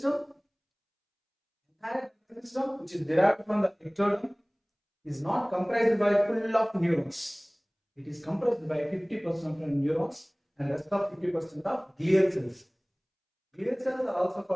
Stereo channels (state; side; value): identical; both; correlation 1.00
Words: entire nervous system, which is derived from the ectoderm, is not comprised by full of neurons. It is comprised by 50% of neurons and rest of 50% of glial cells. Glial cells are also